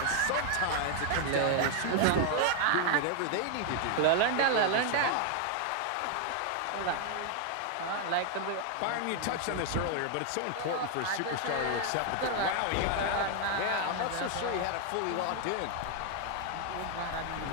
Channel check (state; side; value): different; both; correlation 0.00